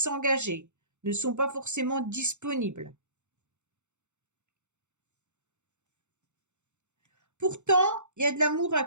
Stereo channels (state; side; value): late; left; 0.83 ms